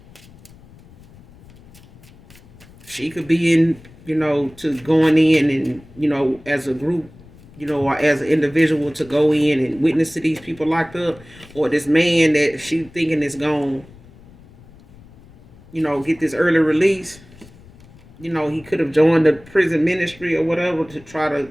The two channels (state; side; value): noise; left; rumble, 23 dB below the sound